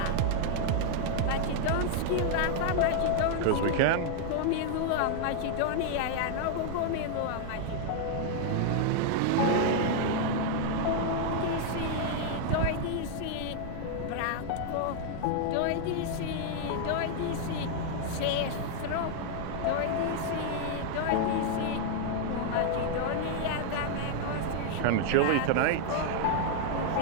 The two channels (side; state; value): both; different; correlation 0.00